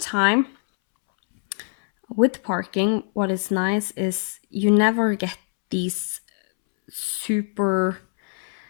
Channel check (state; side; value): silent; right; 63 dB below the other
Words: with parking, what is nice is you never get these super